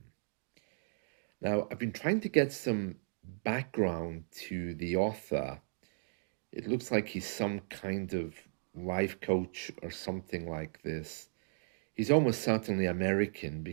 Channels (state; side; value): silent; left; digital silence